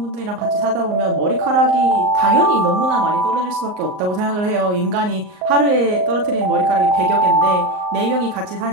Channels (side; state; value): left; late; 38 ms